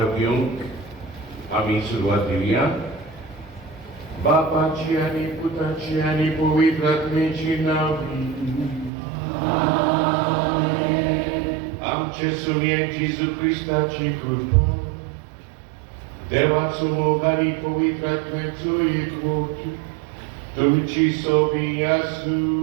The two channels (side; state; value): left; drops out; at 8.9 s